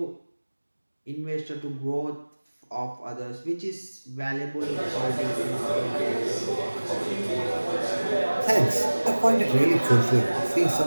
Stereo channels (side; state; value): both; inverted; correlation -1.00